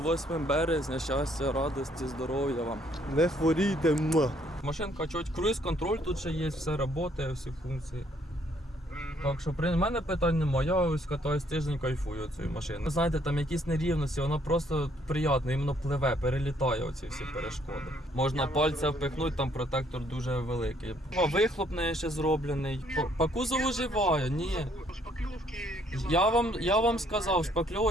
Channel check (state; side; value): normal; both; correlation 0.67